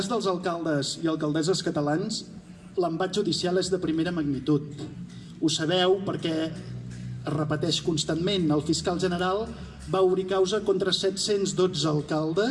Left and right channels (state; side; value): identical; both; correlation 1.00